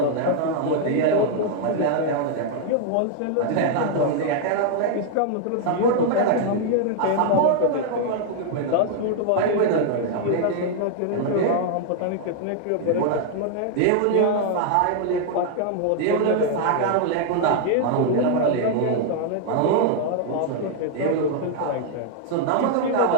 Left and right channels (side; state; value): both; different; correlation -0.01